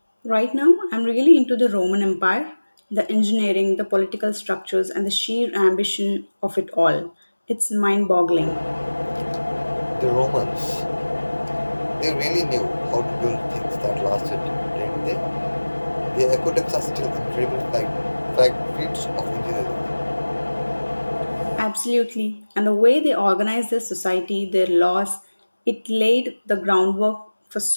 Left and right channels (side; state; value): both; inverted; correlation -1.00